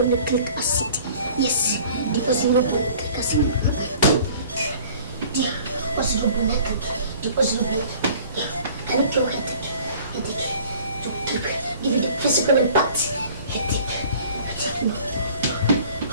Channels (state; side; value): inverted; both; correlation -0.50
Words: acid. Yes, deoxyribonucleic acid. Deoxyribonucleic. Can you cure headache? To give you the physical impact. Headache. No.